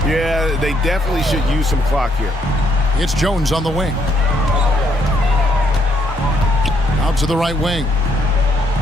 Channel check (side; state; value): both; normal; correlation 0.72